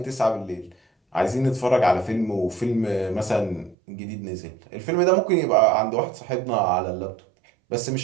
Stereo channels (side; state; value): left; drops out; at 3.8 s